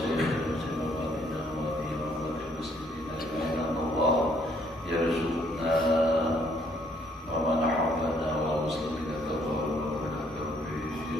سنواتنا وفي رحمة المسلمين أجمعين الله يرزقنا ومن حولنا والمسلمين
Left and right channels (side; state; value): both; normal; correlation 0.67